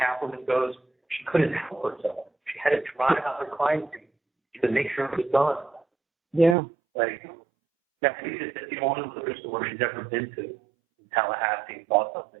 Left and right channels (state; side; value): drops out; left; at 6.6 s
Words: goes, she couldn't help herself. She had to drive out her crime scene to make sure it was done. Yeah. Like, that's the only liquor store she's ever been to in Tallahassee and bought something.